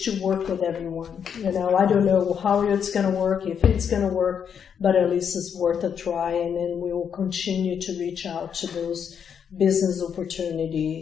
to work with everyone. I don't know how it's going to work, if it's going to work, but at least it's worth a try, and then we will continue to reach out to those business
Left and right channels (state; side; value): quieter; right; 7.6 dB